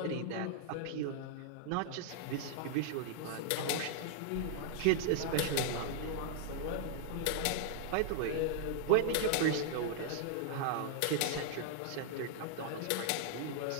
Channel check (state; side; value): different; both; correlation -0.01